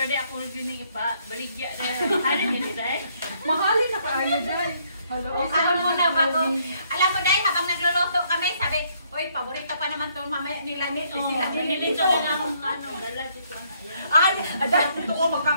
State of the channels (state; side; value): inverted; both; correlation -0.69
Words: dahil. Ako rin yung ipa-baligya dahil. Halin nyo dahil. Mahalin na kaayo dahil. Hello, Alam mo na bago. Alam mo dahil habang nagluluto kami, sabi, oy, paborito pa naman itong mamaya nila ni sila. Nilito ko na akong dala dito na. Ay, dahil gusto ko